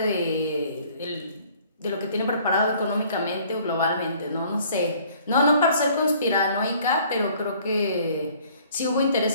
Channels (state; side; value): inverted; both; correlation -0.57